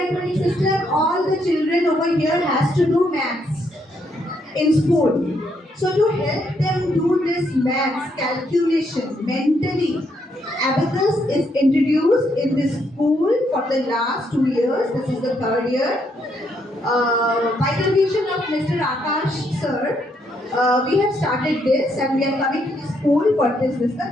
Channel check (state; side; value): normal; both; correlation 0.75